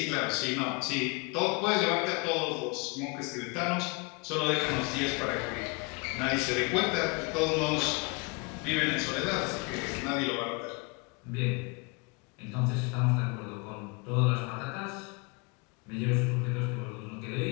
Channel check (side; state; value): right; quieter; 29.4 dB